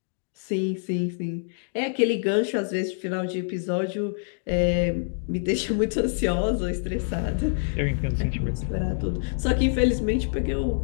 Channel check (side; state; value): right; silent; digital silence